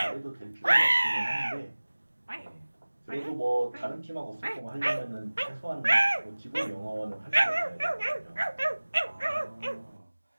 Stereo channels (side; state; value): both; inverted; correlation -1.00